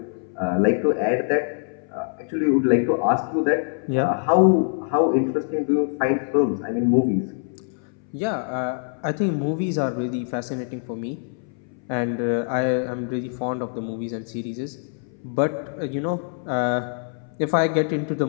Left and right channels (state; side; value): silent; right; 60 dB below the other